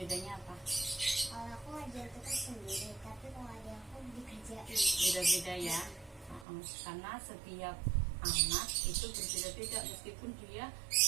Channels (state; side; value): drops out; left; at 6.5 s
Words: Bedanya apa? Kalau aku ngajar tugas sendiri, tapi kalau ada aku dikerjain. Beda-beda ya. Karena setiap anak itu berbeda-beda, meskipun dia